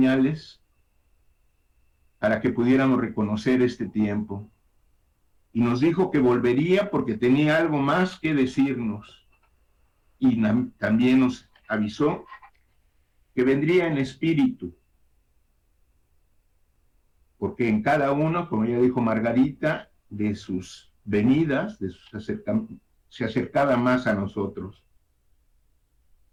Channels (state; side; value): identical; both; correlation 1.00